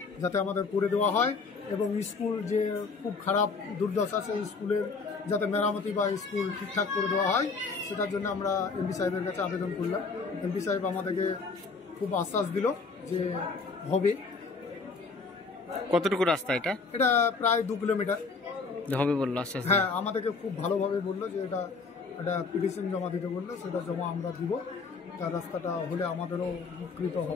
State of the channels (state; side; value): quieter; right; 4.5 dB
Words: যাতে আমাদের করে দেওয়া হয় এবং স্কুল যে খুব খারাপ দুর্দশা, সেই স্কুলের যাতে মেরামতি বা স্কুল ঠিকঠাক করে দেওয়া হয় সেটার জন্য আমরা এমপি সাহেবের কাছে আবেদন করলাম। এমপি সাহেব আমাদেরকে খুব আশ্বাস দিল যে হবে। কতটুকু রাস্তা এটা? এটা প্রায় 2 কিলোমিটার হবে বললো আশ্বাস। হ্যাঁ, আমাদেরকে খুব ভালোভাবে বললো যে এটা পিটিশন জমা দিতে বললো, সেটা জমা আমরা দিব। তার রাস্তাটা হলে আমাদেরও উপকৃত